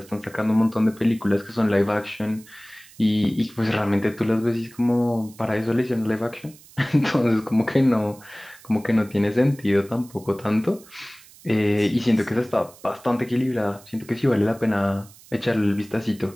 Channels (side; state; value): right; noise; hiss, 23 dB below the sound